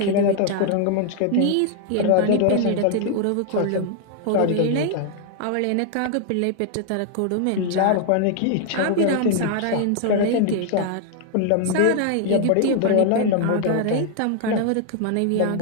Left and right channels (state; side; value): different; both; correlation 0.00